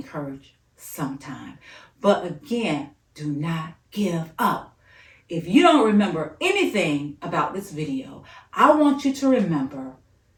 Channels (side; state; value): both; identical; correlation 1.00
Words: sometime. But again, do not give up. If you don't remember anything about this video, I want you to remember